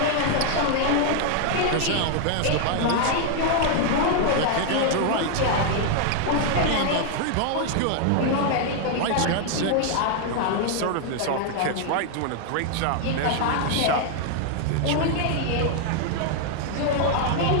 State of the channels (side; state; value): both; different; correlation 0.00